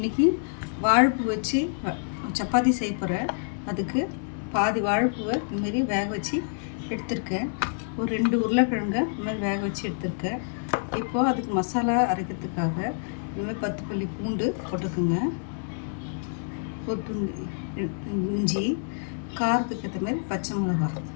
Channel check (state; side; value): silent; right; digital silence